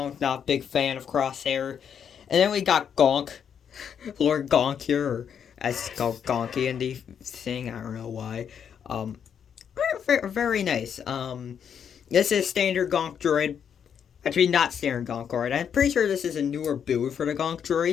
not a big fan of Crosshair. And then we got Gonk. Lord Gonk here, or as it's called Gonky in the thing. I don't know why. Very nice. This is standard Gonk droid. Actually, not standard Gonk droid. I'm pretty sure this is a newer build for the Gonk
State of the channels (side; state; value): right; quieter; 7.9 dB